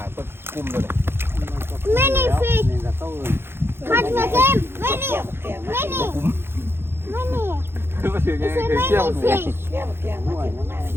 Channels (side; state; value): left; late; 0.11 ms